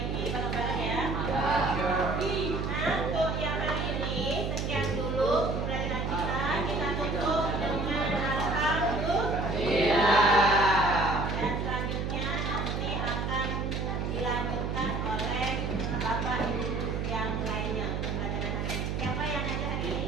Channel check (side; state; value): right; noise; hum, 1 dB below the sound